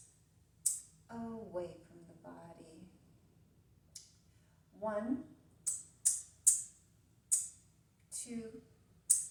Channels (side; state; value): both; identical; correlation 1.00